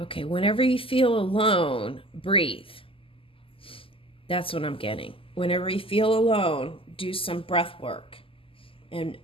whenever you feel alone, breathe. That's what I'm getting. Whenever you feel alone, do some breath work and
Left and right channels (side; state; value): right; late; 0.26 ms